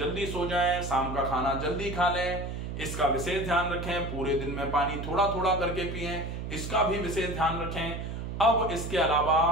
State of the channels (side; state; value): right; noise; hum, 6 dB below the sound